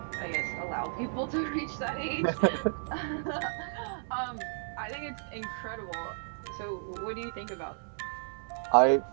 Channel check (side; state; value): left; silent; digital silence